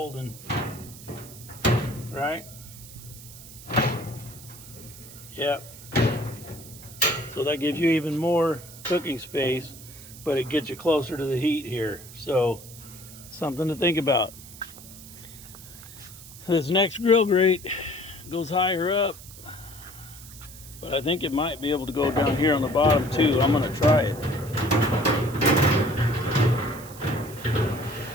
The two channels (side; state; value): right; noise; hiss, 17 dB below the sound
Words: Right? Yep. So that gives you even more cooking space, but it gets you closer to the heat here. So something to think about. This next grill grate goes higher up, but I think it might be able to go down here on the bottom too. I'm going to try it.